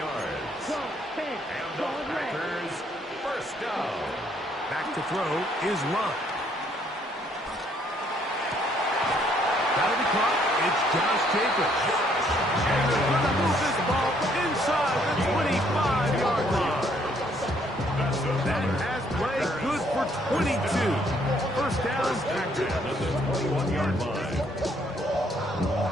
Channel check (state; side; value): normal; both; correlation 0.67